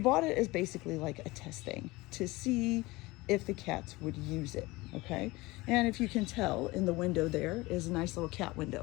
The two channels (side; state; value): right; quieter; 21.5 dB